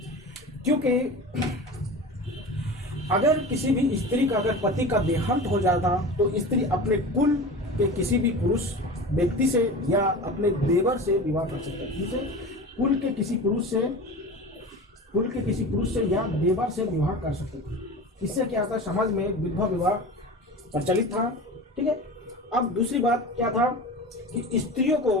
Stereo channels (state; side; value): normal; both; correlation 0.33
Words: क्योंकि अगर किसी भी स्त्री का अगर पति का देहांत हो जाता तो स्त्री अपने कुल के किसी भी पुरुष व्यक्ति से या अपने देवर से विवाह कर सकता है। जिसे कुल के किसी पुरुष से या देवर से विवाह कर सकते थे। इससे क्या था, समाज में विधवा विवाह प्रचलित था। ठीक है, अब दूसरी बात क्या था कि स्त्रियों को